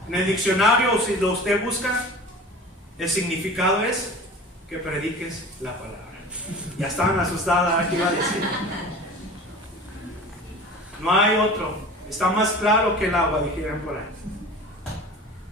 en el diccionario, si lo usted busca, el significado es que prediques la palabra. Ya estaban asustadas, ¿qué iba a decir? No hay otro. Está más claro que el agua, dijeron por ahí.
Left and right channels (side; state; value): both; normal; correlation 0.39